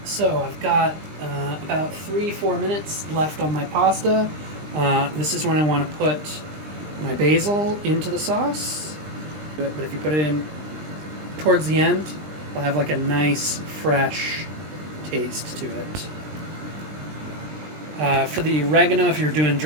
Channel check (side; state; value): left; late; 20 ms